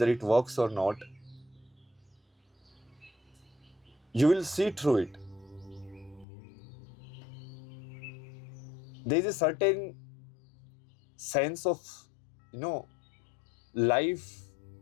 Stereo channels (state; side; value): drops out; right; at 6.2 s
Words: it works or not, you will see through it. There is a certain sense of, life